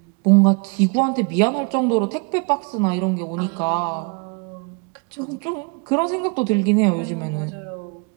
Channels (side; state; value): left; quieter; 33.2 dB